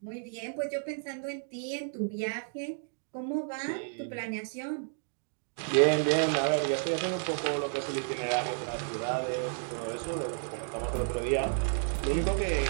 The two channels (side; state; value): left; silent; digital silence